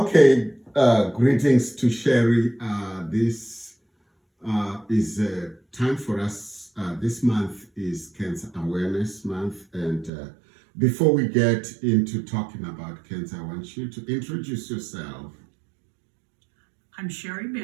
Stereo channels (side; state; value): left; drops out; at 10.1 s